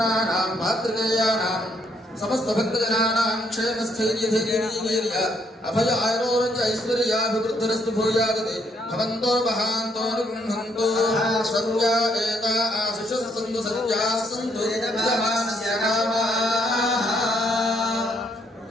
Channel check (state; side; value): normal; both; correlation 0.70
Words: मातृकेयानां समस्त भक्तजनानां क्षेमस्थैर्यधैर्यवीर्य अभय आरोग्य ऐश्वर्याभिवृद्धिरस्तु भूयादते भवन्तो महान्तो निगृह्णन्तु सत्या एता आशिषः सन्तु सत्याः सन्तु यजमानस्य कामाः.